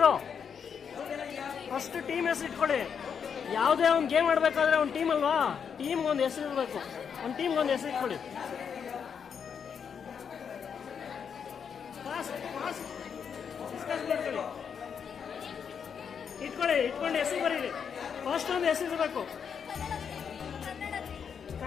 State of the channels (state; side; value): quieter; right; 7.0 dB